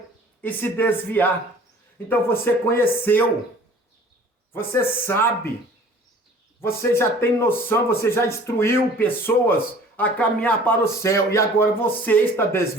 e se desviar. Então você conheceu, você sabe, você já tem noção, você já instruiu pessoas a caminhar para o céu e agora você está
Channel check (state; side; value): normal; both; correlation 0.49